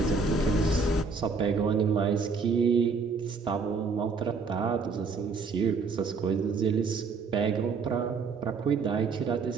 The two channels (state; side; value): quieter; left; 4.7 dB